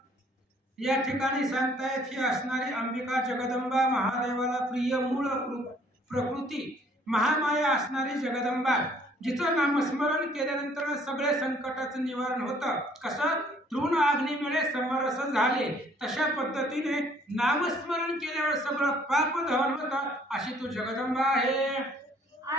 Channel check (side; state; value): both; normal; correlation 0.60